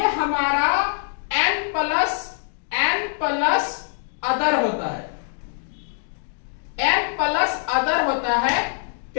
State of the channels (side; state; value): right; silent; digital silence